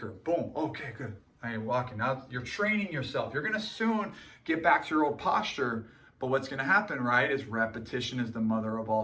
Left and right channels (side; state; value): both; identical; correlation 1.00